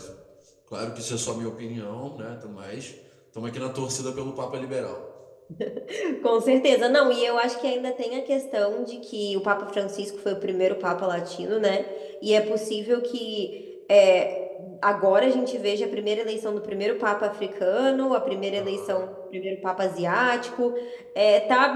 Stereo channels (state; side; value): identical; both; correlation 1.00